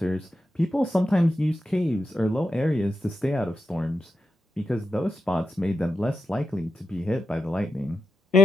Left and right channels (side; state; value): both; normal; correlation 0.88